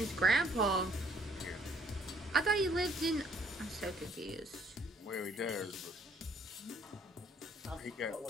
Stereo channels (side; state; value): both; normal; correlation 0.64